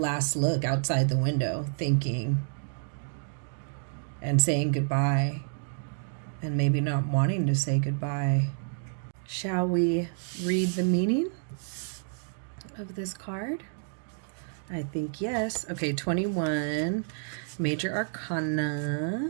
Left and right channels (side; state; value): left; silent; digital silence